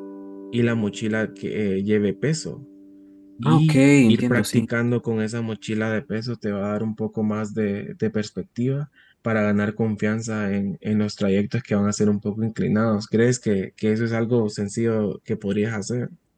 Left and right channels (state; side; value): identical; both; correlation 1.00